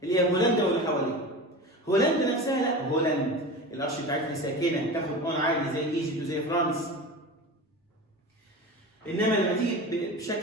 اللي هي هولندا واللي حواليها. هولندا نفسها لا، هولندا القرش بتاعتها ساكنه تاخد اون عادي زي ايجيبت وزي فرنسا. انما لما تيجي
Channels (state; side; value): normal; both; correlation 0.30